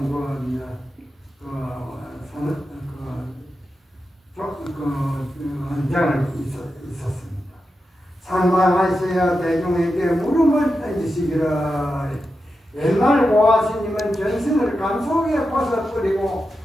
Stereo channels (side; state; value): both; normal; correlation 0.89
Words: 헌장을 있었습니다. 상방하셔야 대중에게 물음을 던지시기를 옛날 보아스님은 전승을 감속에 벗어버리고